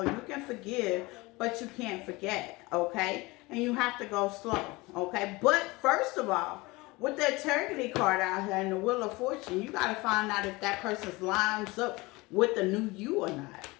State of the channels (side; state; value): right; quieter; 22.8 dB